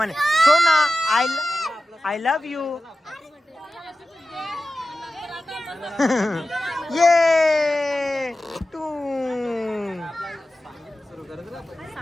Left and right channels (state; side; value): normal; both; correlation 0.94